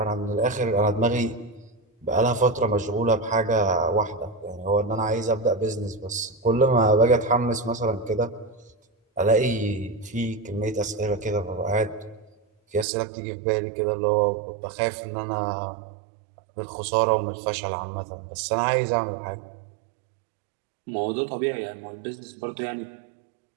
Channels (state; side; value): drops out; left; at 12.9 s